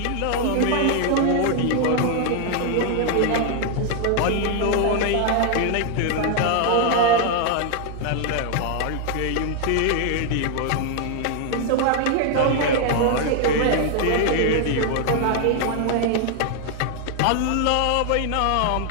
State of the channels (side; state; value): both; different; correlation 0.00